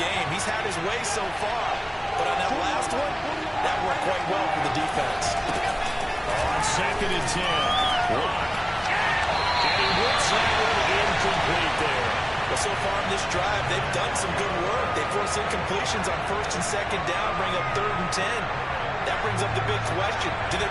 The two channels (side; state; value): both; identical; correlation 1.00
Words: game. He's had his way so far, but on that last one, that worked quite well for the defense. On second and 10, Locke. And he whips that one incomplete there. But so far in this drive, they've done some good work. They force incompletions on first and second down, bring up third and 10. That brings up the big question. Do they